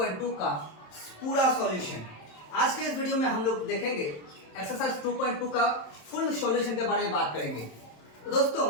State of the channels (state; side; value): late; right; 27 ms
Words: का पूरा सॉल्यूशन। आज के इस वीडियो में हम लोग देखेंगे एक्सरसाइज 2.2 का फुल सॉल्यूशन के बारे में बात करेंगे। तो दोस्तों,